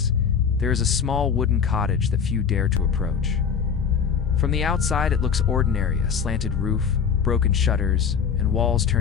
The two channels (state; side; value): quieter; right; 6.8 dB